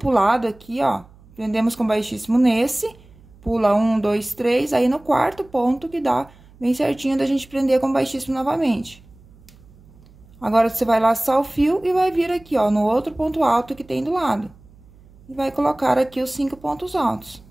aqui, ó. Prendemos com baixíssimo nesse, pula 1, 2, 3, aí no quarto ponto que dá bem certinho da gente prender com baixíssimo novamente. Agora, você vai laçar o fio e vai vir aqui, ó, no outro ponto alto que tem do lado. E vai colocar aqui os 5 pontos altos.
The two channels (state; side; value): noise; right; hum, 25 dB below the sound